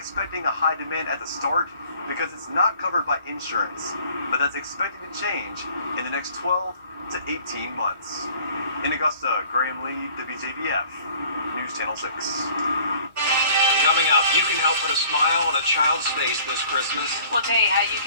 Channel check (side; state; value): both; inverted; correlation -0.53